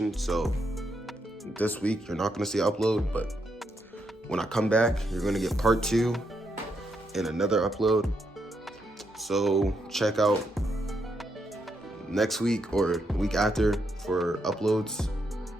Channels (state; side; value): normal; both; correlation 0.80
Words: so this week you're not gonna see an upload, but when I come back, you're gonna get part 2 and another upload. So check out next week or week after for uploads.